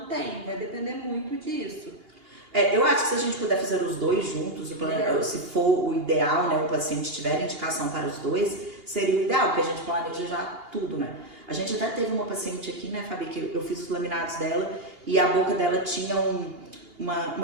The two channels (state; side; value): late; left; 2.8 ms